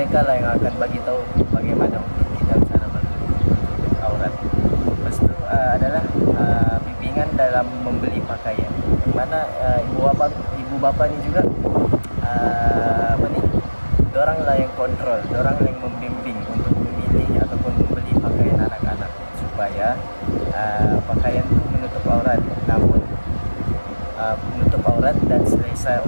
lah yang akan bagi tahu bagaimana untuk kita cara menutup aurat. Lepas itu adalah bimbingan dalam membeli pakaian, yang mana ibu bapa ni juga dorang lah yang kontrol, dorang yang membimbing untuk memilih ataupun membeli pakaian anak-anak supaya pakaian itu menutup aurat, namun menutup aurat dan selesa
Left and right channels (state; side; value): inverted; both; correlation -1.00